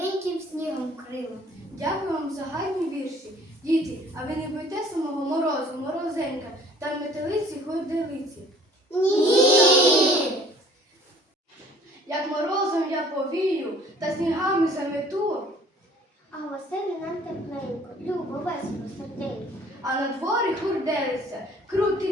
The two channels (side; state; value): both; normal; correlation 0.53